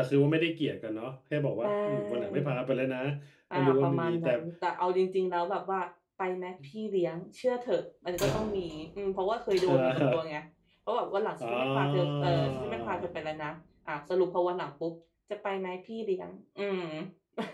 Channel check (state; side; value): identical; both; correlation 1.00